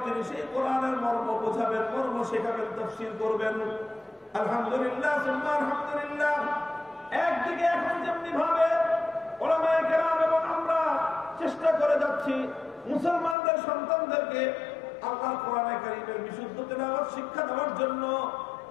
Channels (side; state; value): right; drops out; at 13.4 s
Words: তিনি সেই কোরআনের মর্ম বোঝাবেন, মর্ম শেখাবেন, তাফসীর করবেন। আলহামদুলিল্লাহ সুবহান আলহামদুলিল্লাহ। একদিকে এখন যেমনি ভাবে উলামায়ে কেরাম এবং আমরা চেষ্টা করে যাচ্ছি মুসলমানদের সন্তানদেরকে আল্লাহর কোরআনে কারীমের বিশুদ্ধ তেলাওয়াত শিক্ষা দেওয়ার জন্য,